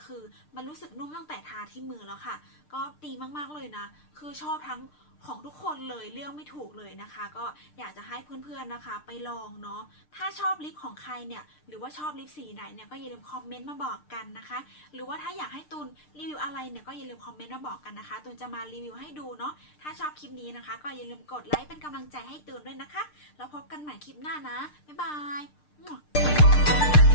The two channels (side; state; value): right; late; 6.6 ms